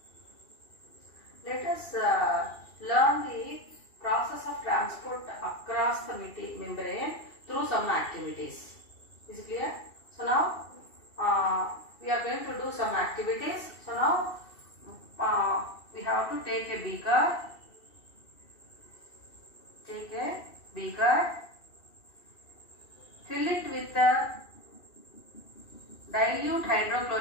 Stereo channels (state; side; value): late; right; 2.7 ms